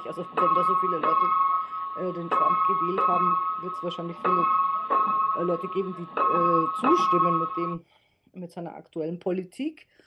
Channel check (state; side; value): identical; both; correlation 1.00